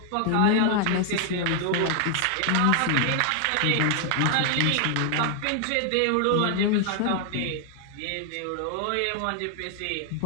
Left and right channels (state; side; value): different; both; correlation 0.00